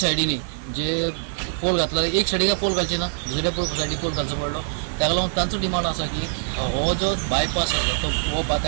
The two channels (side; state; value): left; silent; digital silence